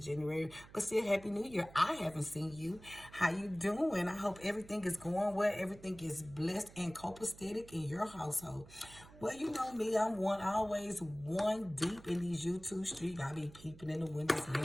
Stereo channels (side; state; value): right; noise; hum, 20 dB below the sound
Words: but still Happy New Year. I haven't seen you. How you doing? I hope everything is going well, everything is blessed and copacetic in your household. Well, you know me, always one deep in these YouTube streets. I be peeping in the windows,